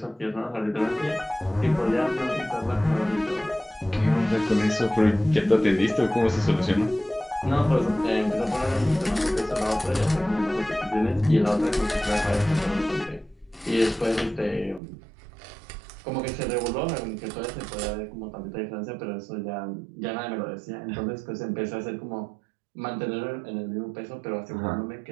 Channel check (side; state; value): left; drops out; at 14.8 s